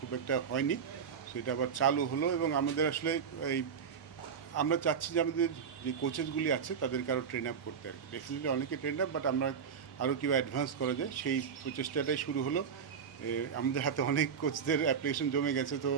খুব একটা হয়নি, সো এটা আবার চালু হলো। এবং আমাদের আসলে এই আমরা চাচ্ছি যে আমাদের যে কোচেসগুলি আছে তাদেরকে আরও ট্রেন আপ করতে আর কি। ডেফিনেটলি অনেকে ট্রেন আপ, বাট আমরা আরও কীভাবে অ্যাডভান্স করা যায় সেই প্রচেষ্টাটাই শুরু হলো। আমাদের হাতে অনেক কোচদের অ্যাপ্লিকেশন জমে গেছে, তো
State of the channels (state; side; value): quieter; left; 6.8 dB